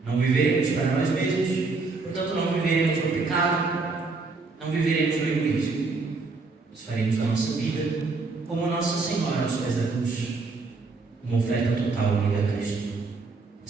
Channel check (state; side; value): quieter; left; 4.0 dB